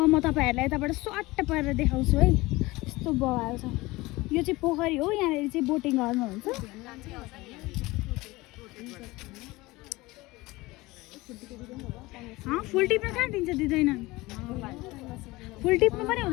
म तपाईँहरूलाई यताबाट स्वाट्ट पारेर देखाउँछु है यस्तो बवाल छ यो चाहिँ पोखरी हो यहाँनिर चाहिँ बोटिङ गर्नुहुन्छ फुल टिप्न कहाँ दिन्छ दिँदैन फुल टिप्नु पनि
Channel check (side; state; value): right; quieter; 20.8 dB